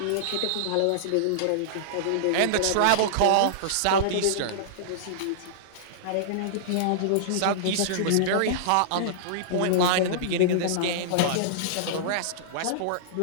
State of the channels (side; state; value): both; different; correlation -0.02